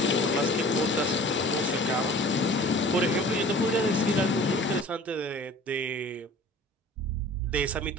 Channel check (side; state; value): both; normal; correlation 0.45